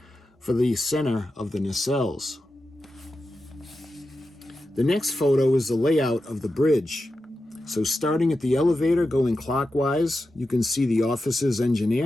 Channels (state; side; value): normal; both; correlation 0.91